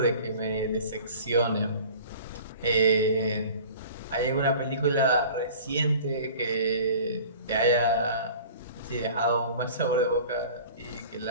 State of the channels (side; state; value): both; inverted; correlation -0.43